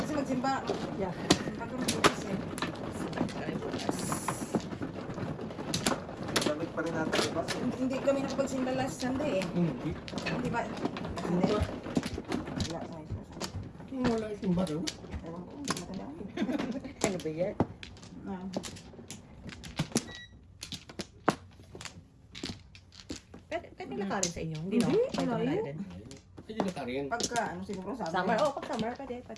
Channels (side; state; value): both; identical; correlation 1.00